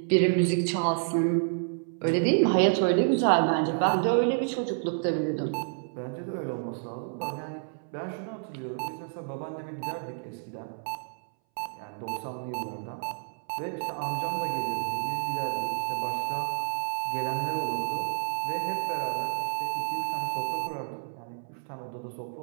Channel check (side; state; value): left; silent; 58 dB below the other